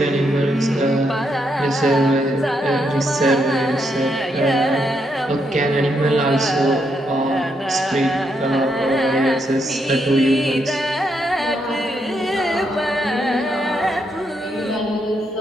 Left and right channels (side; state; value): both; normal; correlation 0.78